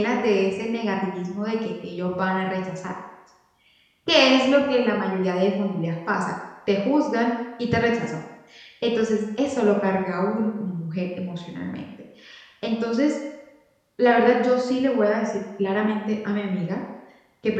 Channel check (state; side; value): identical; both; correlation 1.00